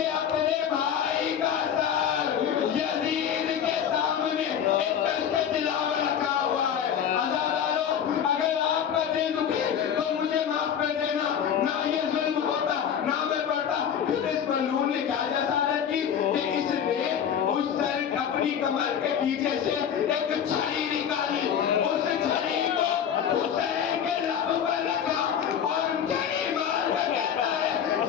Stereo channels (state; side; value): quieter; right; 8.5 dB